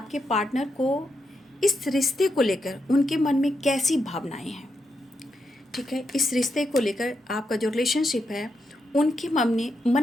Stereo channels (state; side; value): normal; both; correlation 0.83